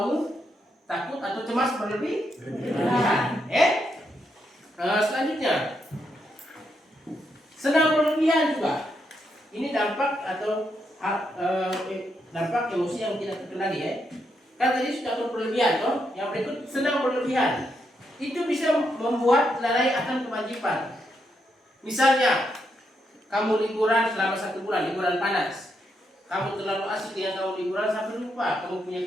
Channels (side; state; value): both; normal; correlation 0.80